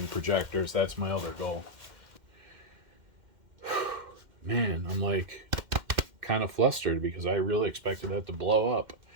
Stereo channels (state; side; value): late; left; 2.1 ms